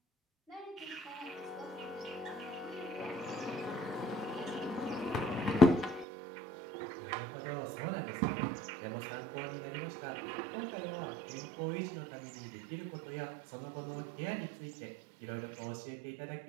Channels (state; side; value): drops out; left; at 6.1 s